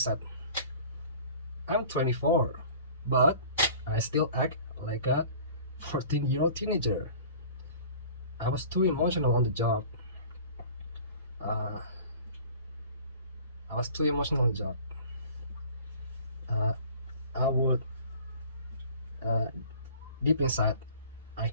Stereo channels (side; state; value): both; inverted; correlation -0.46